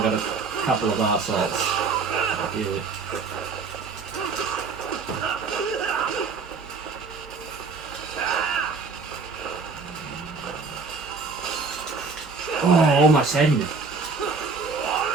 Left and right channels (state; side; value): quieter; left; 4.6 dB